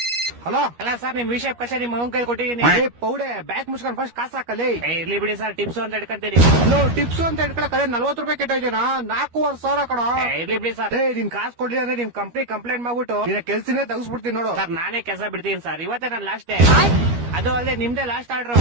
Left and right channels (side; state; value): left; late; 13 ms